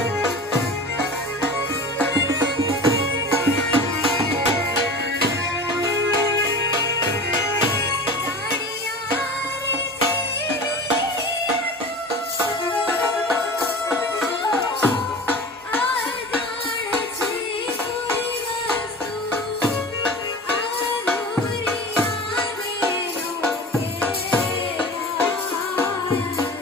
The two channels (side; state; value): both; normal; correlation 0.35